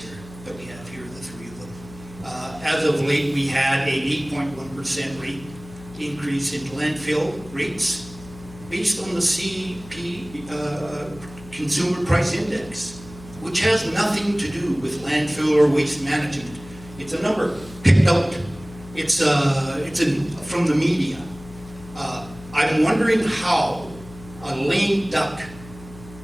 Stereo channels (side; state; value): left; noise; hum, 18 dB below the sound